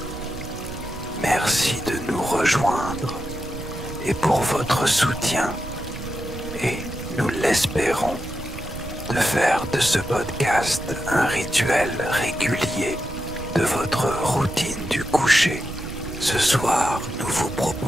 Merci de nous rejoindre et pour votre soutien et, nous l'espérons, de faire de ce podcast un rituel régulier de votre routine du coucher. Ce soir, nous vous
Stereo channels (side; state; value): right; noise; rumble, 11 dB below the sound